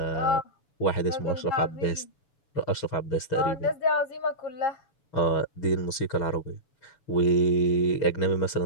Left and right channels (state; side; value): late; right; 7.0 ms